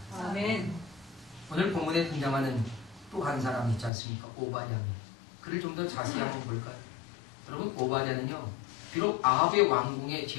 아멘. 오늘 본문에 등장하는 또 한 사람 있지 않습니까? 오바댜. 그를 좀 더 자세히 한번 볼까요? 여러분, 오바댜는요, 비록 아합의 왕궁의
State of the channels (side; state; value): right; drops out; at 3.9 s